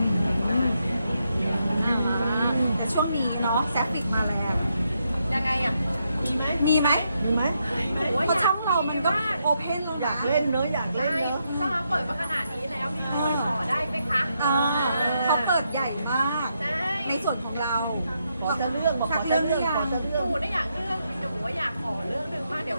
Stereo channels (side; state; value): both; inverted; correlation -0.80